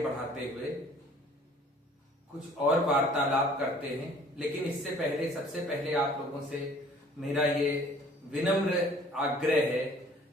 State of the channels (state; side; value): normal; both; correlation 0.53